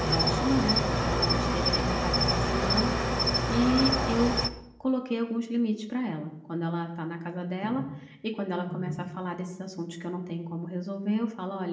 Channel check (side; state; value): both; identical; correlation 1.00